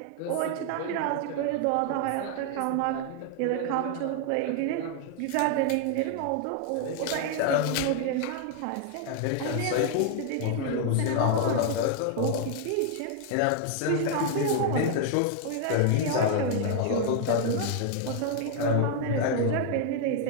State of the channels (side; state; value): both; different; correlation 0.00